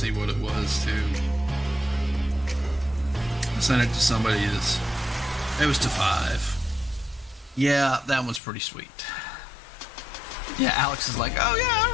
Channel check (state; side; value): drops out; right; at 8.4 s